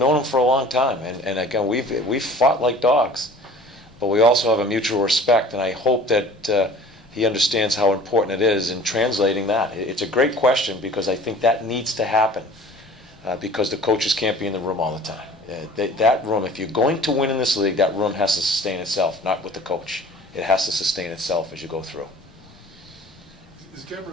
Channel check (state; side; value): normal; both; correlation 0.46